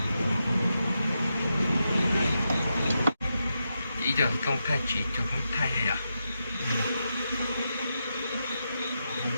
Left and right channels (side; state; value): both; inverted; correlation -0.86